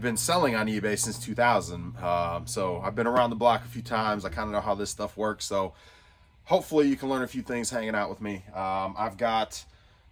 been selling on eBay since 2000. So I've been around the block a few times. I kind of know how this stuff works. So hopefully you can learn a few things hanging out with me. I've got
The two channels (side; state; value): both; identical; correlation 1.00